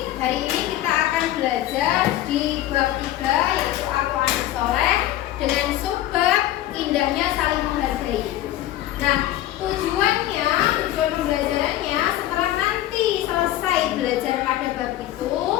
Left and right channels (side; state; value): right; quieter; 13.9 dB